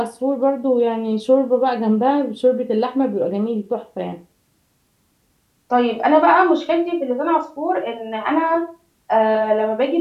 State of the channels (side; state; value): both; identical; correlation 1.00